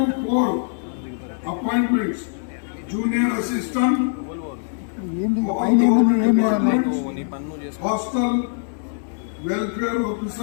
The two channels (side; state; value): right; silent; 64 dB below the other